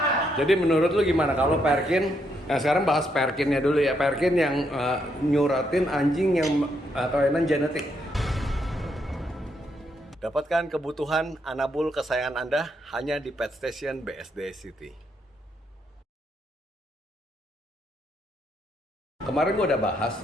Jadi menurut lu gimana kalau Perkin? Nah sekarang bahas Perkinnya dulu ya. Perkin yang nyuratin anjing yang kelainan genetik. Dapatkan kebutuhan anabul kesayangan Anda hanya di Pet Station BSD City. Kemarin gue udah bahas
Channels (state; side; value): normal; both; correlation 0.77